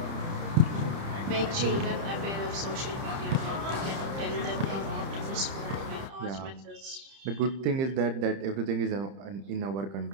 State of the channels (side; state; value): left; late; 30 ms